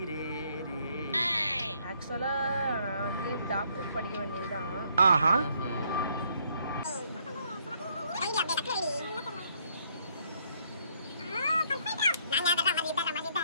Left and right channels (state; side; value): inverted; both; correlation -0.69